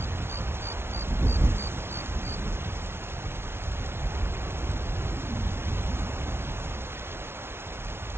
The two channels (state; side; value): late; left; 0.12 ms